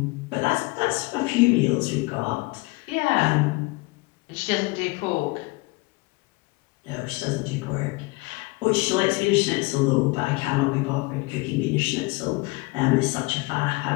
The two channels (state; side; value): quieter; right; 24.4 dB